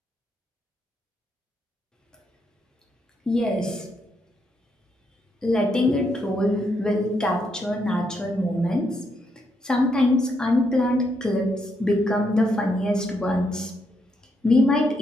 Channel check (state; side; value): normal; both; correlation 0.78